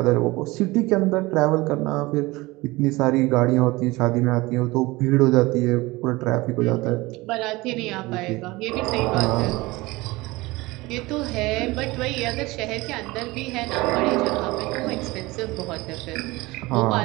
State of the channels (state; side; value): quieter; left; 21.5 dB